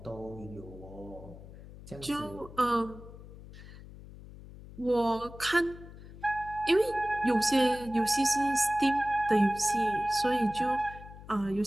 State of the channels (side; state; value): left; noise; hum, 16 dB below the sound